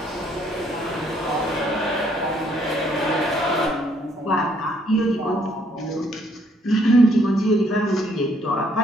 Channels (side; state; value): both; normal; correlation 0.67